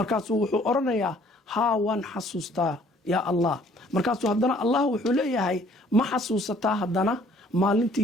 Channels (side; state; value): both; normal; correlation 0.59